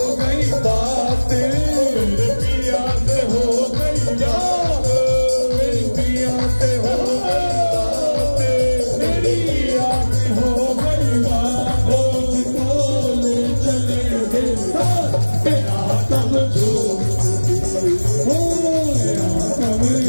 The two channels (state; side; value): inverted; both; correlation -1.00